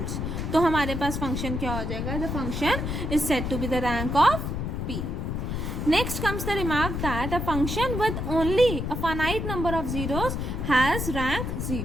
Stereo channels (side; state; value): left; noise; rumble, 3 dB below the sound